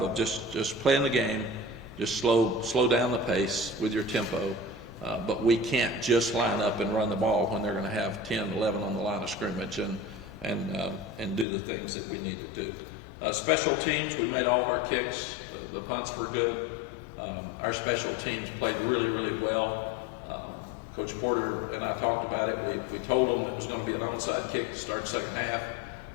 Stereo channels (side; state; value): right; drops out; at 11.5 s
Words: of just playing the game, just slow down the pace with your tempo, but we can't just line up and run the ball when they're going to have 10, 11 on the line of scrimmage and do the things that we need to do. Special teams, we made all of our kicks. The punts were good. Our special teams played really, really well. Coach Porter and I talked about it. We told them it was going to be an onside kick to start the second half.